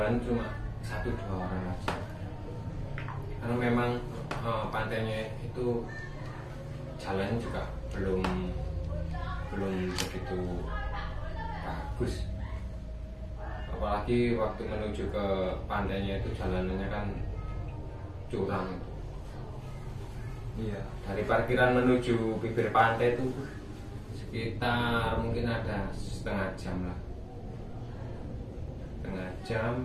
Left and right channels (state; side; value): identical; both; correlation 1.00